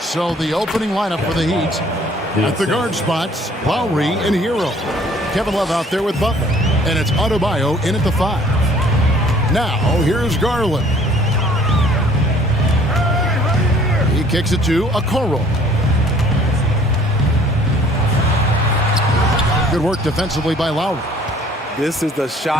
the opening lineup for the Heat. At the guard spots, Lowry and Hero. Kevin Love out there with Butler. And it's Adebayo in at the 5. Now, here's Garland. He kicks it to Okoro. Good work defensively by Lowry. This is the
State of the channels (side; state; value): both; normal; correlation 0.56